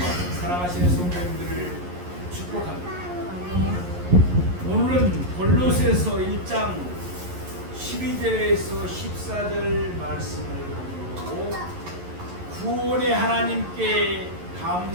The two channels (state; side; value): late; left; 11 ms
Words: 사랑하시는 성도님들을 축복합니다. 아멘. 오늘은 골로새서 1장 12절에서 14절 말씀을 보고 구원의 하나님께